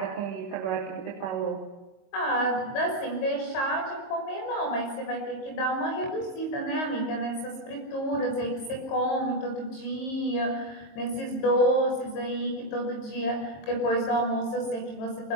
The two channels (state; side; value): late; right; 22 ms